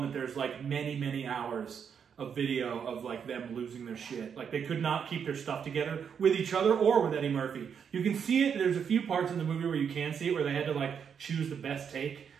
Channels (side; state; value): left; quieter; 7.3 dB